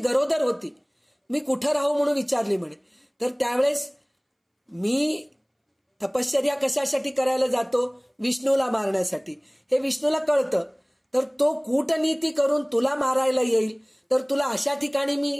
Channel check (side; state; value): both; identical; correlation 1.00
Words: होती. मी कुठं राहू म्हणून विचारली म्हणे. तर त्यावेळेस मी तपश्चर्या कशासाठी करायला जातो? विष्णूला मारण्यासाठी. हे विष्णूला कळतं. तर तो कूटनीती करून तुला मारायला येईल, तर तुला अशा ठिकाणी